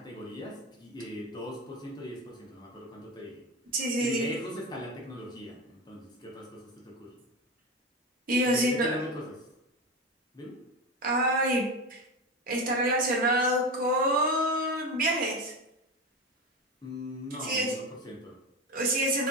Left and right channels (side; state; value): both; normal; correlation 0.21